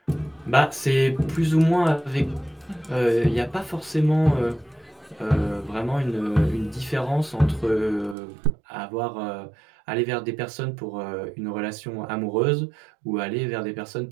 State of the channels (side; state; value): left; drops out; at 8.2 s